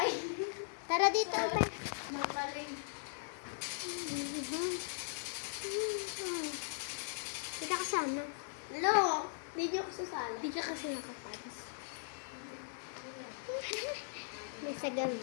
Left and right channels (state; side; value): silent; right; digital silence